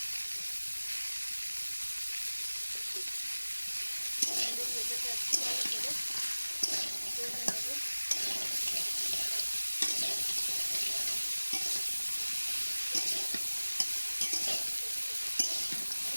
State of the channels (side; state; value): both; inverted; correlation -1.00